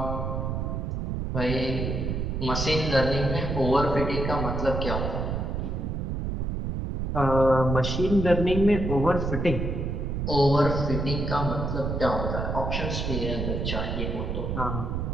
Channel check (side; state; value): right; noise; rumble, 2 dB below the sound